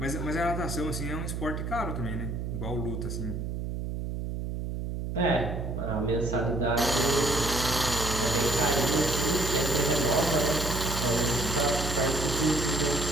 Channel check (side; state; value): right; noise; hum, 4 dB below the sound